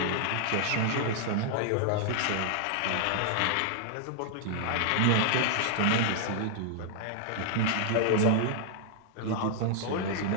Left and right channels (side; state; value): both; different; correlation -0.01